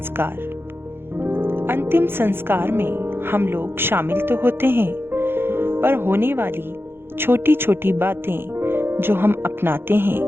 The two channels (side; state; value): left; late; 0.11 ms